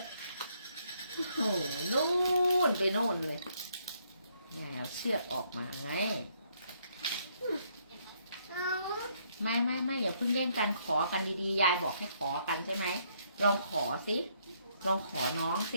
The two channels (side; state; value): both; inverted; correlation -0.71